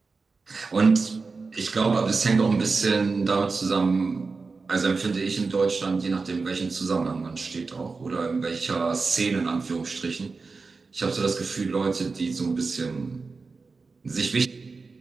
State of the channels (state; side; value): quieter; left; 4.3 dB